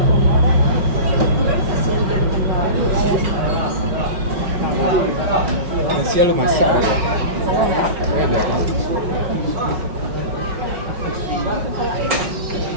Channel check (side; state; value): left; late; 5.5 ms